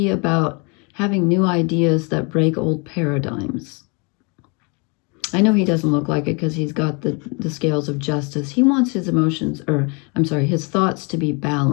about having new ideas that break old paradigms. I know he doesn't look like it because he's got the scales of justice. He wants his emotions, or I'm sorry, his thoughts to be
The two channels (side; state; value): right; quieter; 32.3 dB